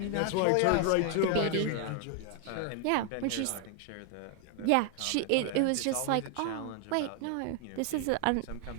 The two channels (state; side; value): different; both; correlation 0.00